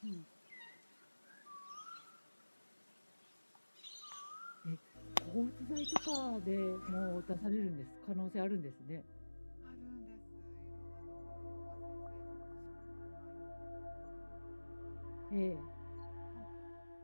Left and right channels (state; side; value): inverted; both; correlation -1.00